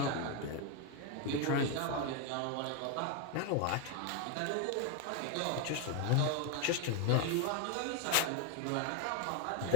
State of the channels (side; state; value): both; different; correlation 0.01